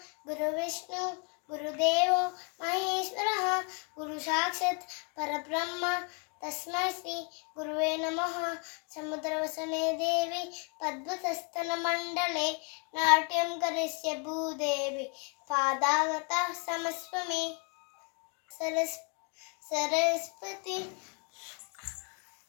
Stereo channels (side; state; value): right; quieter; 35.5 dB